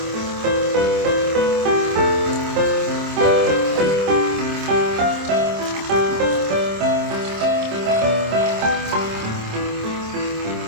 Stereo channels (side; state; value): left; late; 26 ms